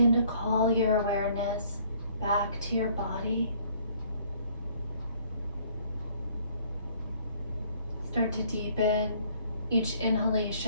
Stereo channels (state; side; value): inverted; both; correlation -0.59